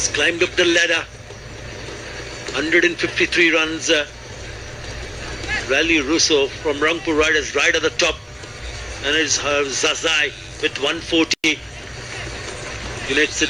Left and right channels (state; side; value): identical; both; correlation 1.00